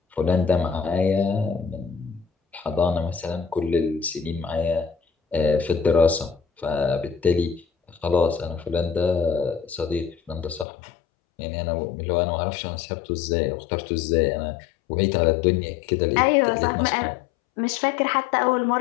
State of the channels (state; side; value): drops out; right; at 10.7 s